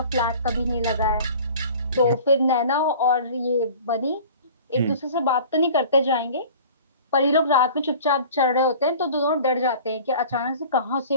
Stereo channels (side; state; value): both; inverted; correlation -0.44